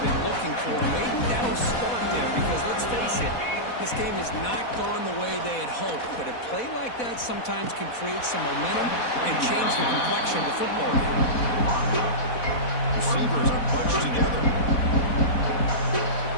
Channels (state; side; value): late; right; 4.1 ms